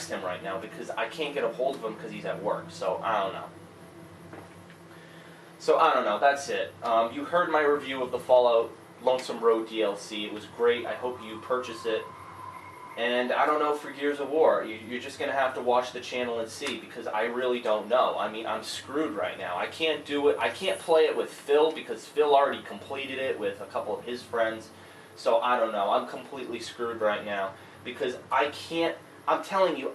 him right now because I can't get a hold of him because he's at work. So I don't know. That's it. You heard my review of the Fallout Lonesome Road DLC. It was great. I hope you purchase it. And I don't know for Gears of War. You're just going to have to watch the channel and see, because I really don't know. I mean, I'm screwed right now. I can't do it. I can't play it with Phil because Phil already completed it with a couple of his friends. So I don't know. I'm completely screwed right now because I can't. I'm telling you,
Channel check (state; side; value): identical; both; correlation 1.00